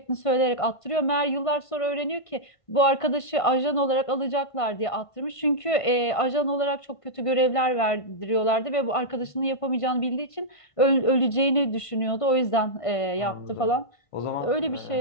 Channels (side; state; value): right; late; 1.5 ms